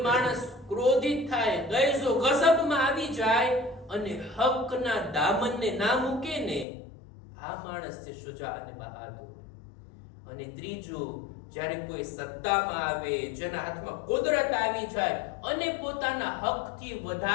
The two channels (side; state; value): right; drops out; at 6.7 s